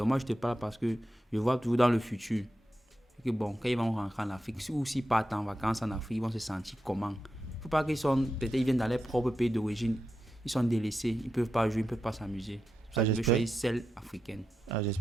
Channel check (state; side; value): normal; both; correlation 0.88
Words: moi, je te parle parce que je vois toujours dans le futur que bon, quand ils vont rentrer en Afrique, ou s'ils partent en vacances en Afrique, ils vont se sentir comment? Il ne faut pas qu'ils sont, peut-être ils viennent dans leur propre pays d'origine, ils sont délaissés, ils ne peuvent pas jouer, ils ne peuvent pas s'amuser. Je veux choisir celle africaine.